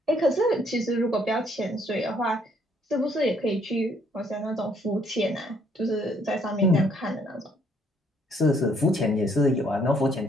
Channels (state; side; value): normal; both; correlation 0.66